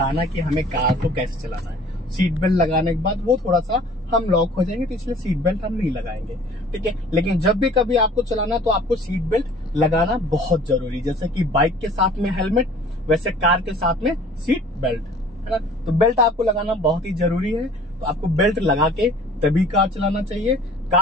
कि हमें कार को कैसे चलाना है। सीट बेल्ट लगाने के बाद वो थोड़ा सा हम लॉक हो जाएंगे, तो इसलिए सीट बेल्ट हम नहीं लगाएंगे, ठीक है। लेकिन जब भी कभी आपको चलाना तो आपको सीट बेल्ट लगाना बहुत जरूरी, जैसे कि बाइक के साथ में हेलमेट, वैसे कार के साथ में सीट बेल्ट, है ना। तो बेल्ट आपको लगाना बहुत ही जरूरी है। तो आपको बेल्ट लगा के तभी कार चलाना चाहिए।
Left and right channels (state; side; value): normal; both; correlation 0.50